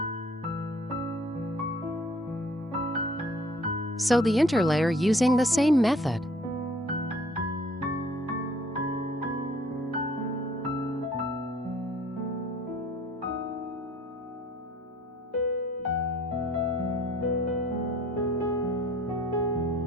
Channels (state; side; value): normal; both; correlation 0.56